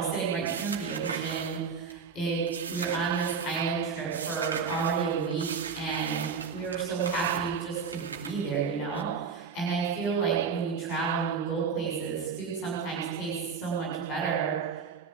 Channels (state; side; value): quieter; left; 5.9 dB